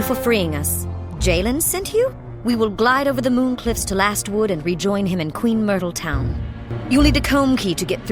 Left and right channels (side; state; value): both; identical; correlation 1.00